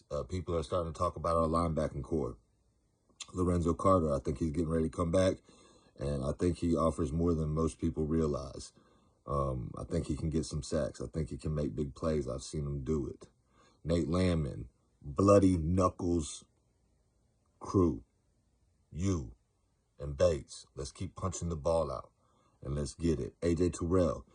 People are starting to talk about our linebacking core. Lorenzo Carter, I think he's getting ready to come back, and I think he offers more than most people realize. I think he can get some sacks. I think he can make big plays. I've seen him do it. Nate Landman, Bloody Knuckles crew, you and Bates, let's keep punching the ball out and let's get it. AJ Terrell,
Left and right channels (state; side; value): identical; both; correlation 1.00